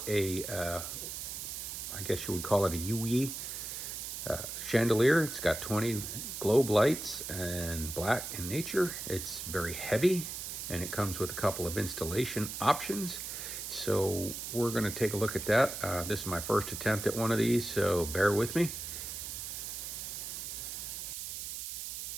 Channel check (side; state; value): right; noise; hiss, 6 dB below the sound